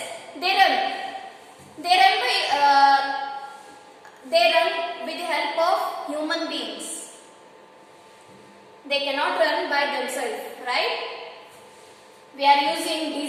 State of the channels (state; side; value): identical; both; correlation 1.00